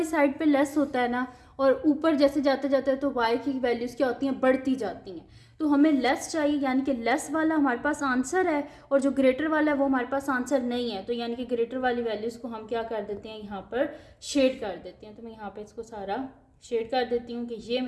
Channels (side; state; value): both; identical; correlation 1.00